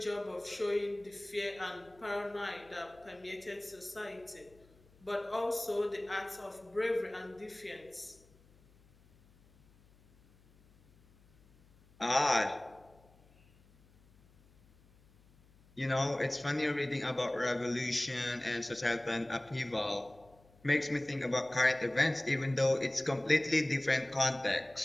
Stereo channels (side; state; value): left; noise; hum, 28 dB below the sound